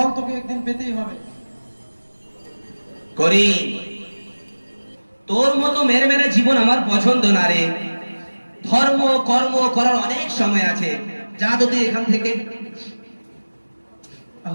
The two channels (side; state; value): both; inverted; correlation -1.00